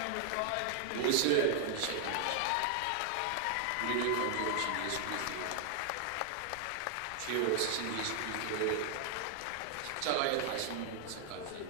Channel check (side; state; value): both; different; correlation 0.00